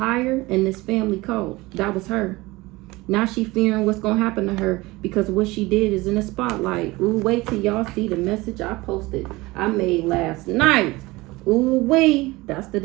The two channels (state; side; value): quieter; left; 21.2 dB